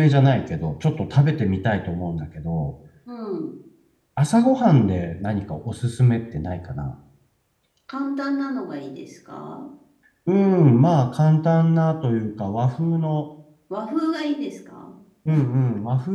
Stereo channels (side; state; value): both; identical; correlation 1.00